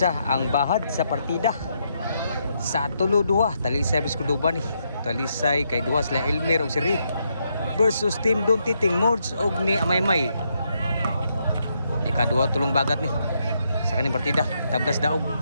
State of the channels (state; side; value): inverted; both; correlation -0.78